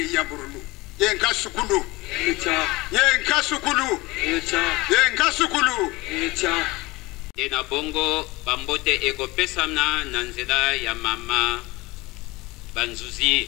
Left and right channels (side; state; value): right; quieter; 21.9 dB